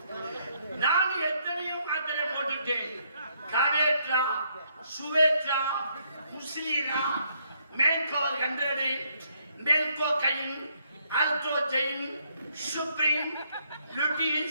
நான் எத்தனையோ மாத்திரை போட்டுட்டேன். காவேட்ரா, சுவேட்ரா, முஸ்லீனா, மேல்கோவர் 100, மேல்கோ கைன், அல்ட்ரோஜைன், சுப்ரீம்,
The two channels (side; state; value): both; inverted; correlation -0.71